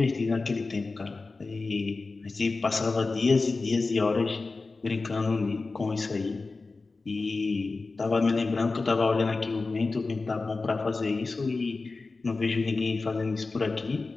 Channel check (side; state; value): right; quieter; 3.8 dB